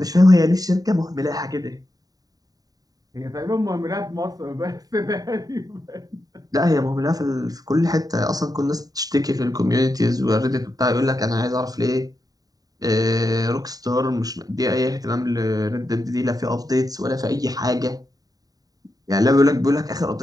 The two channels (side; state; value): left; late; 0.18 ms